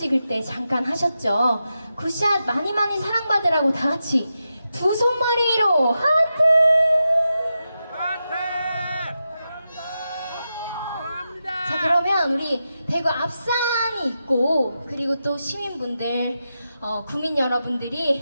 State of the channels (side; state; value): both; inverted; correlation -0.89